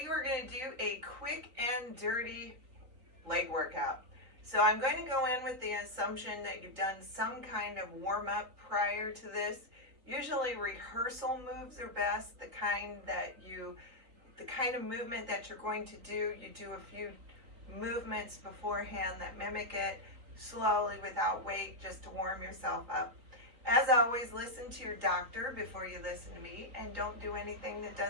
we're going to do a quick and dirty leg workout. So I'm going to go in with the assumption that you've done some kind of warm-up prior to this. Usually rehearsal moves are best, the kind of movement that you're going to do. You do a few movements beforehand that mimic it slowly without weight, just to warm yourself up. As always, listen to your doctor before you listen to me, and don't do anything that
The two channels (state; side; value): late; left; 3.9 ms